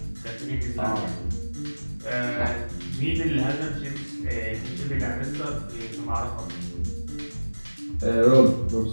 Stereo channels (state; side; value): inverted; both; correlation -1.00